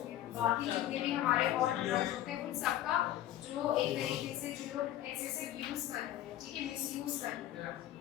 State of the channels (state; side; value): quieter; right; 13.1 dB